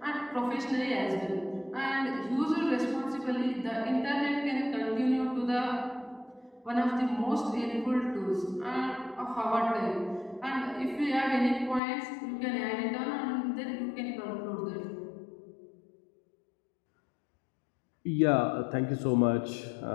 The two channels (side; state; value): right; drops out; at 11.8 s